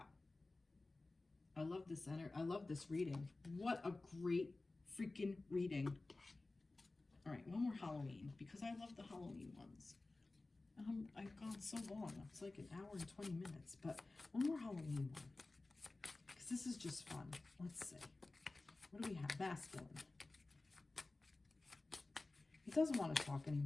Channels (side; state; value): right; quieter; 3.2 dB